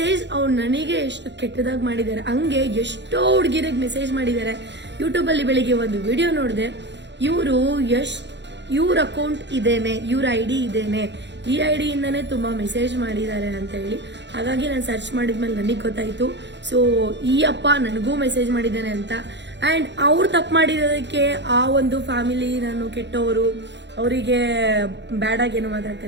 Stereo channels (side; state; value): left; late; 0.52 ms